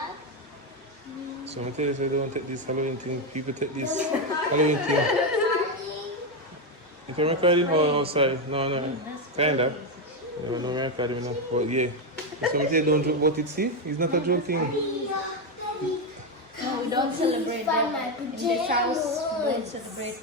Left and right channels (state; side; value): normal; both; correlation 0.07